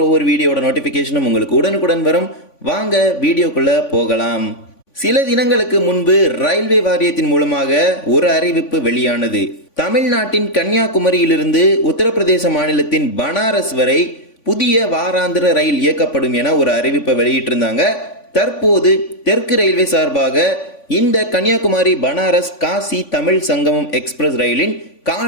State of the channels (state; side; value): late; right; 3.5 ms